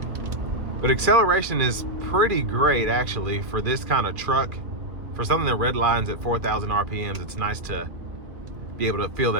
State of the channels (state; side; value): late; left; 2.4 ms